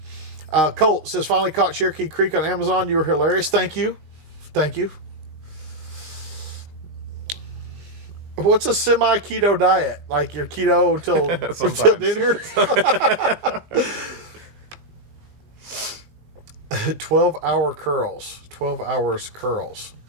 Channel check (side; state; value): left; late; 19 ms